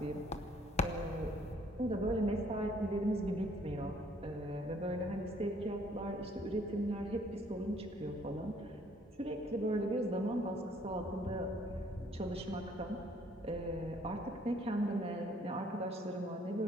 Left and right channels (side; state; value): both; normal; correlation 0.62